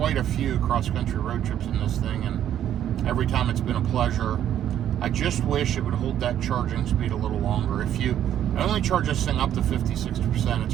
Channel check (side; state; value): left; quieter; 10.7 dB